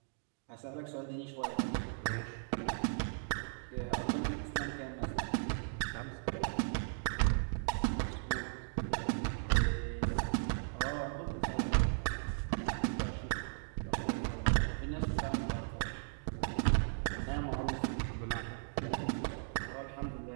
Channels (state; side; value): silent; left; digital silence